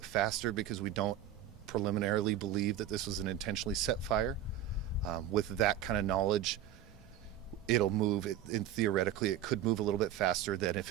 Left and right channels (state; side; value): quieter; left; 10.3 dB